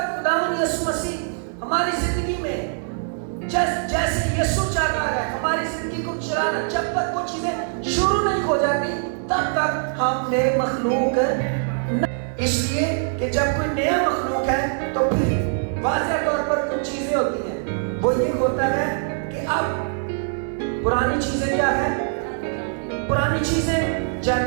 خداوند یسوع مسیح ہماری زندگی میں جیسے یسوع چاہتا ہے ہماری زندگی کو چلانا، جب تک وہ چیزیں شروع نہیں ہو جاتی تب تک ہم نئے مخلوق ہیں۔ اس لیے کہ جب کوئی نیا مخلوق ہے تو پھر واضح طور پر کچھ چیزیں ہوتی ہیں، وہ یہ ہوتا ہے کہ اب پرانی چیزیں کیا ہے؟ پرانی چیزیں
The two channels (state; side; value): silent; left; digital silence